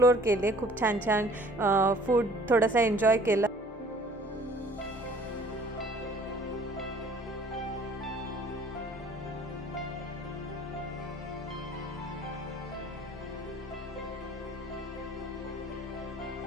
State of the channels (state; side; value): normal; both; correlation 0.53